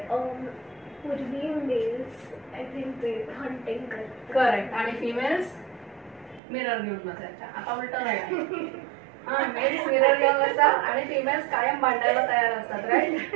पूर्वी mails I think ते हंटिंग करतात. करेक्ट. आणि फिमेल्स मिरर घेऊन बसायच्या. आता उलट राहील. हा, मेल्स मिरर घेऊन बसतात आणि फिमेल्स कायम भांडायला तयार असतात. राईट.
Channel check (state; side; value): drops out; left; at 6.4 s